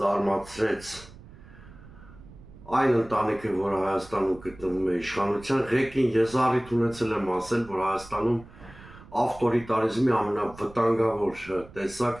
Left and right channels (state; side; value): noise; right; rumble, 20 dB below the sound